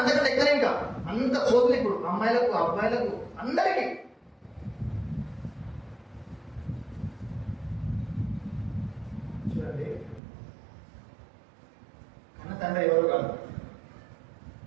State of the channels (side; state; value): left; drops out; at 10.2 s